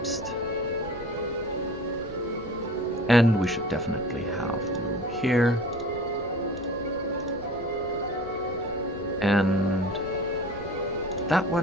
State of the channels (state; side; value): noise; right; rumble, 24 dB below the sound